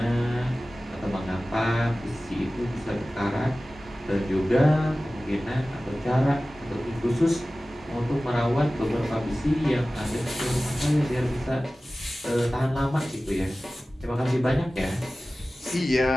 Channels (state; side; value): normal; both; correlation 0.97